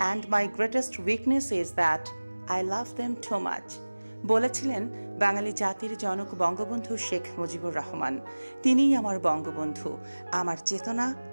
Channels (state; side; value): inverted; both; correlation -1.00